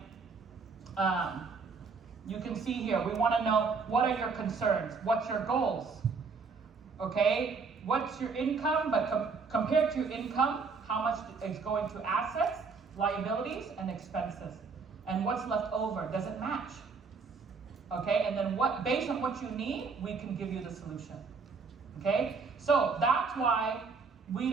you can see here, we want to know what are your concerns, what's your goals, okay? What's your income, but compared to your income, how much is going to assets, liabilities, and expenses? And what's left over, does it match? Okay, and then based on what you need, we can give you the solution. Okay, so that's why we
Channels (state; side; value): quieter; left; 4.9 dB